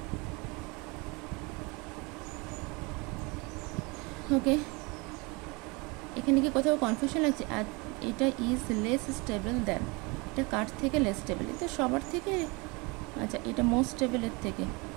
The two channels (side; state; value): left; quieter; 27.6 dB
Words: ওকে, এখানে কি কোথাও কনফিউশন লাগছে? আর এটা ইজ লেস স্টেবল দেন, এটা কার থেকে লেস স্টেবল? এটা সবার থেকে, আচ্ছা এটা মোস্ট স্টেবল এর থেকে,